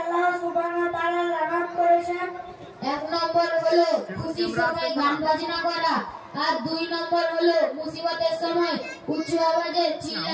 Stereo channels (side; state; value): both; identical; correlation 1.00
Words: সুবহানাহু ওয়া তাআলা লানত করেছেন? এক নম্বর হলো খুশির সময় গান বাজনা করা, আর দুই নম্বর হলো মুসিবতের সময় উচ্চ আওয়াজে